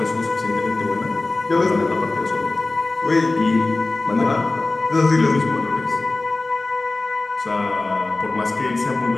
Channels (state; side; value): quieter; right; 3.1 dB